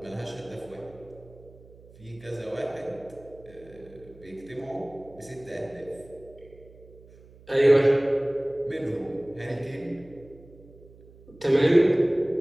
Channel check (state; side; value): noise; right; hum, 23 dB below the sound